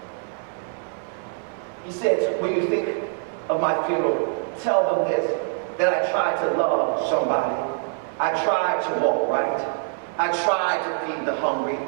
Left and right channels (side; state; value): left; silent; 62 dB below the other